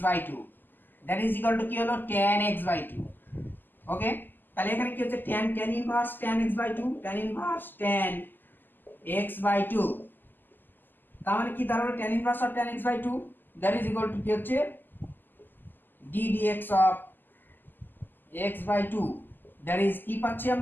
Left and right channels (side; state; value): right; late; 0.091 ms